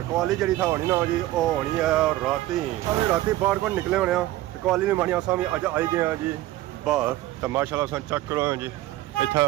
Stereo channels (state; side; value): quieter; left; 15.8 dB